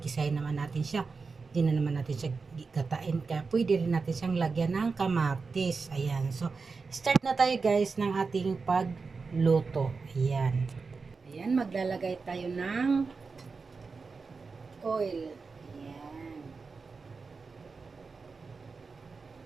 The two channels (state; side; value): quieter; left; 4.6 dB